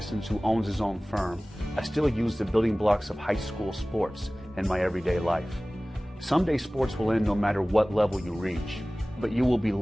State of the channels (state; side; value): normal; both; correlation 0.98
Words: who owns his own firm, I still use the building blocks of high school sports in my everyday life. Someday sports will end no matter what level you reach, but you will be